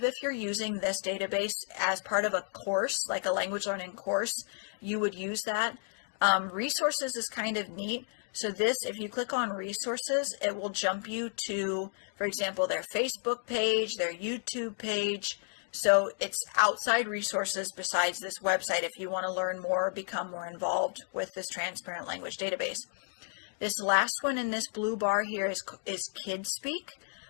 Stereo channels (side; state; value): right; silent; 56 dB below the other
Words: if you're using this database as part of a course, like a language learning course, you would use that. Resources is kind of neat. So this, if you click on resources, it will jump you to, for example, their Facebook page, their YouTube page. So it's outside resources besides this website if you want to learn more or become more involved with this transparent language database. This last one in this blue bar here is Kidspeak.